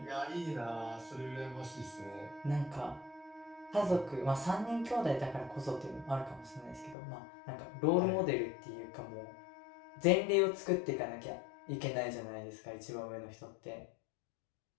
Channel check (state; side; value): drops out; right; at 7.0 s